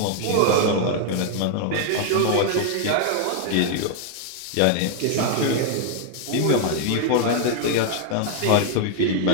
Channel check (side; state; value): both; different; correlation 0.00